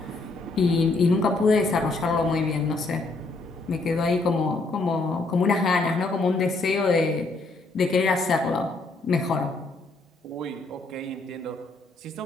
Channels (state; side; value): quieter; right; 3.4 dB